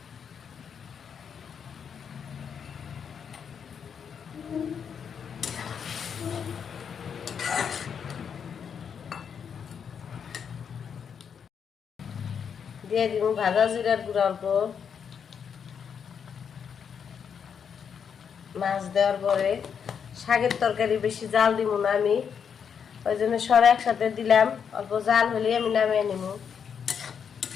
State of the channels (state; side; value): quieter; right; 7.2 dB